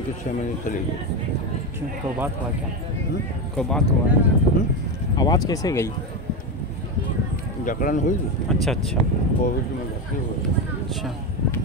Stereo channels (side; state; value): both; normal; correlation 0.15